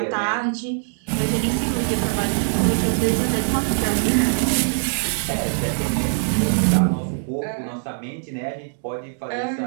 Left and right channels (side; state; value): left; silent; digital silence